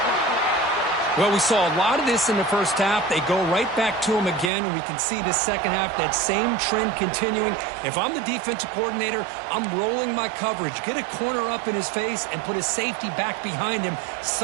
Well, we saw a lot of this in the first half. They go right back to him again, and we can see the second half, that same trend continuing. If I'm the defensive coordinator, I'm rolling my coverage. Get a corner up in his face and put a safety back behind him.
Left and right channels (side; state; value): left; drops out; at 4.5 s